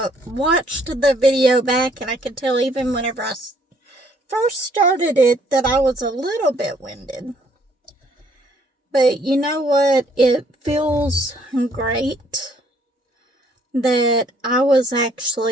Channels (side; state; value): both; normal; correlation 0.65